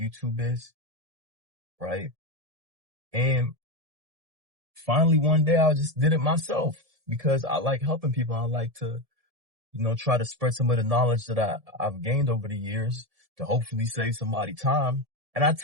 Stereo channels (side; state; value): left; late; 1.7 ms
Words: is, right? And finally one day I just did it myself because I like helping people. I like to, try to spread some of the knowledge that I've gained over the years to hopefully save somebody time. And I